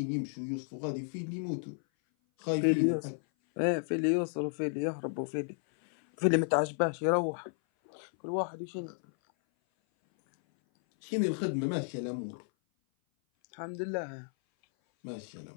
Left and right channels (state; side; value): silent; right; 56 dB below the other